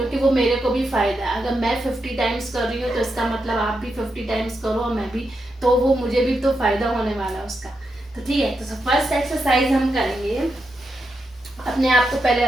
वो मेरे को भी फायदा है। अगर मैं 50 टाइम्स कर रही हूँ तो इसका मतलब आप भी 50 टाइम्स करो और मैं भी, तो वो मुझे भी तो फायदा होने वाला है उसका। तो ठीक है, तो फर्स्ट एक्सरसाइज हम करेंगे अपने आप को पहले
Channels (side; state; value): both; normal; correlation 0.85